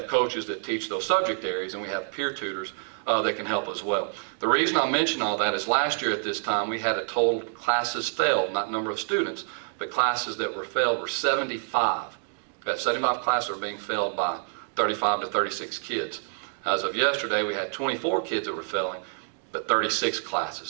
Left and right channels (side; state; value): left; silent; digital silence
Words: coaches that teach those subject areas, and we have peer tutors that can help as well. The reason I mention all that is last year at this time we had a total classes failed, not number of students, but classes that were failed were 75. We had 75 classes that were being failed by 35 to 36 kids. As of yesterday, we had 24 kids that were failing, but 36 classes.